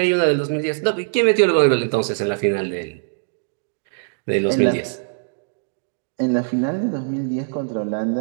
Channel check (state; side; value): silent; left; digital silence